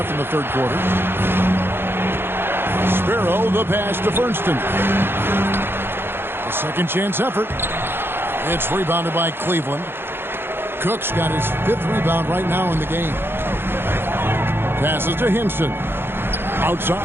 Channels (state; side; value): late; left; 0.11 ms